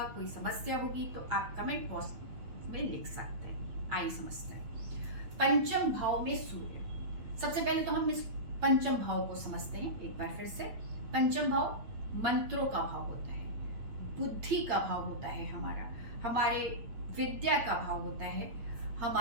कोई समस्या होगी तो आप कमेंट बॉक्स में लिख सकते हैं। आइए समझते हैं पंचम भाव में सूर्य। सबसे पहले तो हम इस पंचम भाव को समझते हैं एक बार फिर से। पंचम भाव मंत्रों का भाव होता है, बुद्धि का भाव होता है, हमारे विद्या का भाव होता है,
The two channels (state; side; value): late; left; 8.7 ms